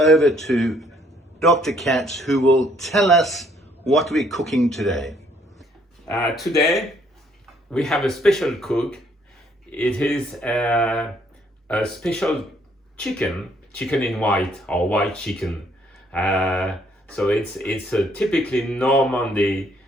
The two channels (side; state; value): both; normal; correlation 0.66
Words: to Dr. Katz, who will tell us what we're cooking today. Today we have a special cook. It is a special chicken in white or white chicken. So it's a typically Normandy